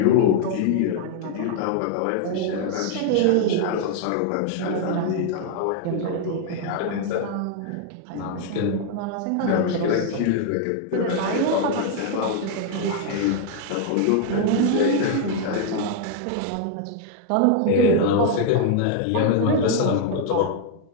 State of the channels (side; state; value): both; different; correlation 0.00